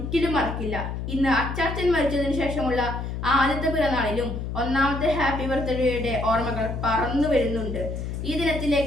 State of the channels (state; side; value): noise; left; hum, 5 dB below the sound